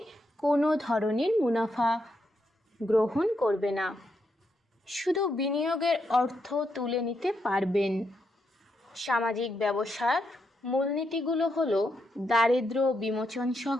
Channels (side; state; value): both; normal; correlation 0.81